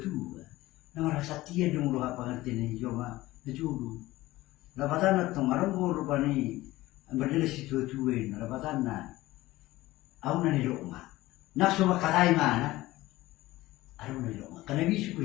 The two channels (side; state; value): right; quieter; 17.7 dB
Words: nama rasa tiada dong lo apa ngerti ni cuma dulu, lawatan itu marah mulu pani berdiri si dua, lawatan aku nani rokok, nak semua kalai mana? Aduh nilo, karena bisa